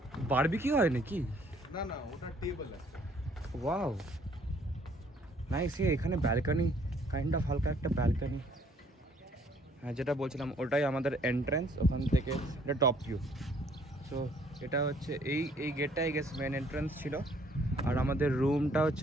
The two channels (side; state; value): both; normal; correlation 0.62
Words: বারবিকিউ হয় নাকি? না না, ওটা টেবল আছে। Wow nice. এখানে ব্যালকনি, কাইন্ড অফ হালকা একটা ব্যালকনি। হ্যাঁ, যেটা বলছিলাম ওটাই আমাদের এন্ট্রান্স, ওখান থেকে এটা টপ ভিউ। সো এটা হচ্ছে এই গেটটা আই গেস মেন এন্ট্রান্স ছিল, আর আমাদের রুমটা